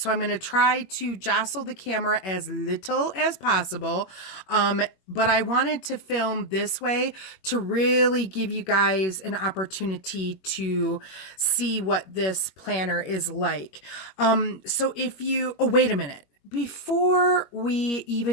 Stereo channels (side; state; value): right; late; 21 ms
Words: I'm going to try to jostle the camera as little as possible. But I wanted to film this way to really give you guys an opportunity to see what this planner is like. So if you, oh, wait a minute. Before we